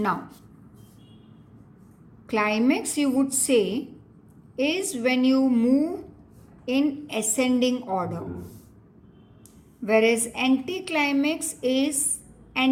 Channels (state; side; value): identical; both; correlation 1.00